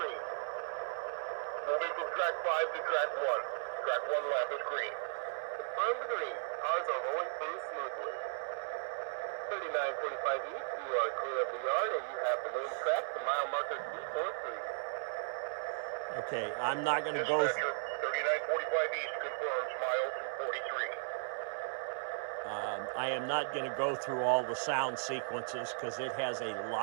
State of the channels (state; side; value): silent; left; 54 dB below the other